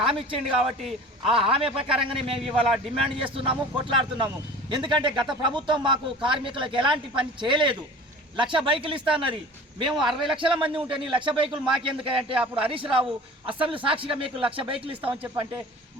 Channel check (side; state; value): both; normal; correlation 0.41